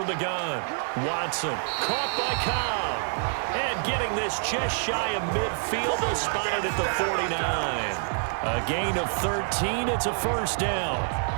the gun. Watson caught by Cobb. And getting this just shy of midfield. They'll spot it at the 49. A gain of 13. It's a 1st down.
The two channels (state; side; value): silent; left; 59 dB below the other